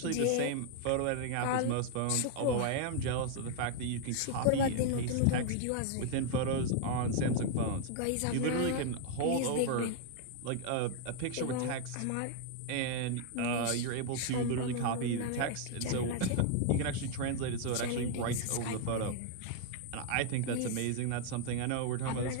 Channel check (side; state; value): both; different; correlation 0.00